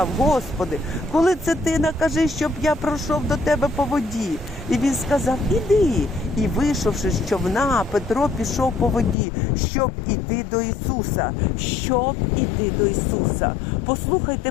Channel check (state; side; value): drops out; right; at 9.2 s